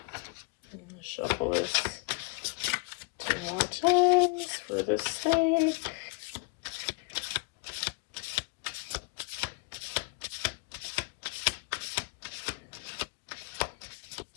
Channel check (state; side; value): quieter; right; 31.2 dB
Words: Shuffle this 2 more times for the snake.